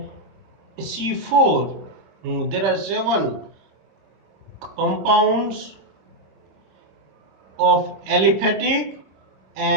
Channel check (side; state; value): left; late; 26 ms